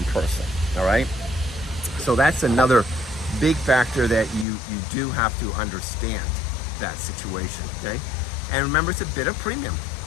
person, all right? So that's another big factor that you do have to understand that situation, okay? And remember, it's a bit of premium.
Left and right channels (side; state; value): right; drops out; at 4.5 s